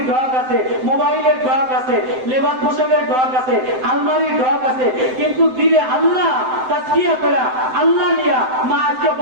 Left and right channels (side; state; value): left; late; 7.8 ms